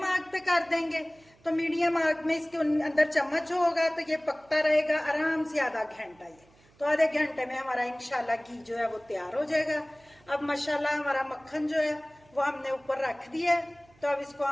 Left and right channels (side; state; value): right; noise; hum, 30 dB below the sound